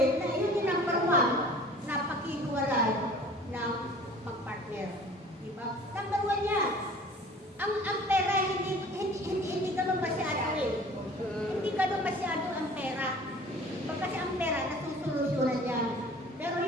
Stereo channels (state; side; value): normal; both; correlation 0.47